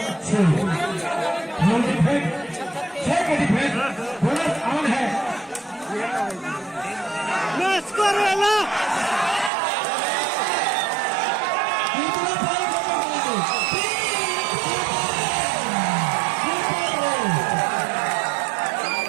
6 के डिफेंस बोनस ऑन है।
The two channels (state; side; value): drops out; left; at 9.5 s